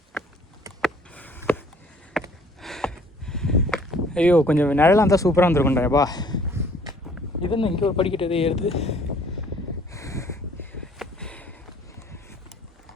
ஐயோ கொஞ்சம் நிழலாக இருந்தால் சூப்பராக இருந்திருக்கும்டாப்பா. இது என்ன இங்கே ஒரு படிக்கட்டு எதே ஏறுது?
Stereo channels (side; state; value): both; normal; correlation 0.57